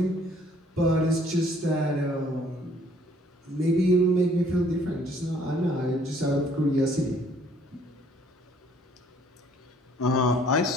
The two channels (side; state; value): both; normal; correlation 0.60